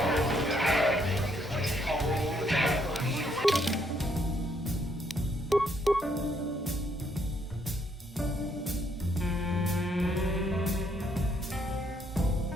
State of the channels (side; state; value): both; normal; correlation 0.72